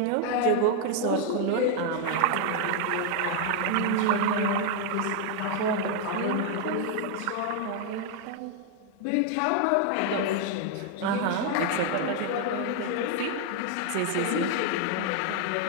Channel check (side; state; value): both; different; correlation 0.00